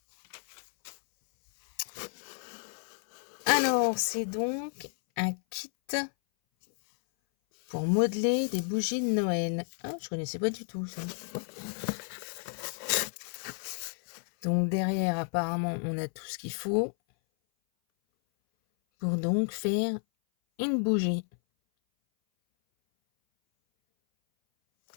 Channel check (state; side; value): silent; right; 57 dB below the other